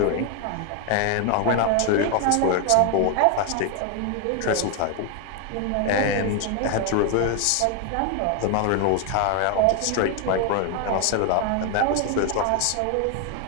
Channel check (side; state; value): both; different; correlation 0.01